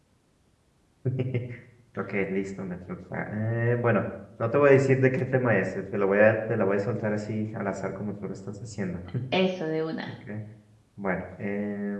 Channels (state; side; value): identical; both; correlation 1.00